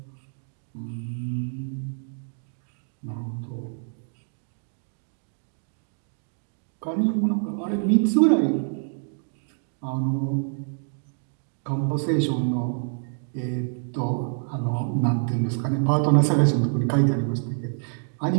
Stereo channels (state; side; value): silent; left; 61 dB below the other